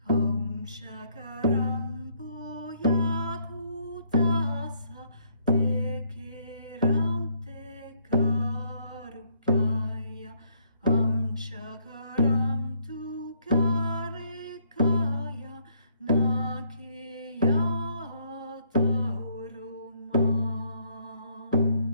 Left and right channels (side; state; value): both; inverted; correlation -0.68